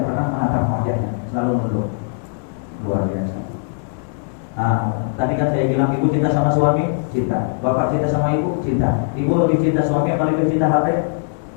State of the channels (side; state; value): right; silent; digital silence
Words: pernah menatap wajahnya, selalu menunduk. Luar biasa. Tadi kan saya bilang ibu cinta sama suami, cinta. Bapak cinta sama ibu, cinta. Ibu lebih cinta suami apa lebih cinta HP?